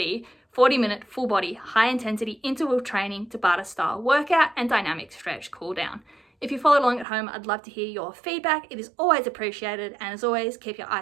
40-minute full body, high intensity interval training Tabata style workout and dynamic stretch cool down. If you followed along at home, I'd love to hear your feedback. It is always appreciated, and as always, keep your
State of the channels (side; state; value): left; drops out; at 7.1 s